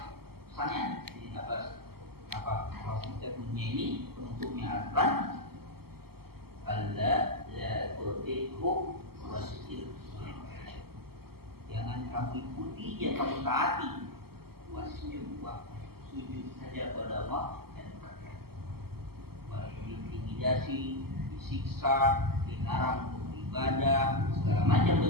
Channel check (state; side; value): late; left; 0.95 ms